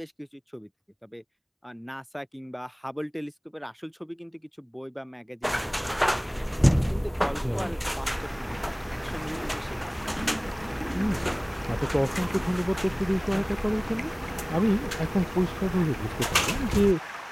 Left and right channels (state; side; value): identical; both; correlation 1.00